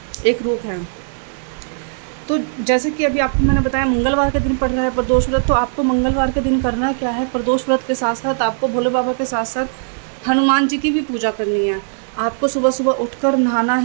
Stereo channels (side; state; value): left; silent; digital silence